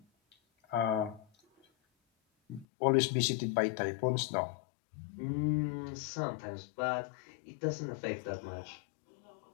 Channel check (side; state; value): right; drops out; at 2.7 s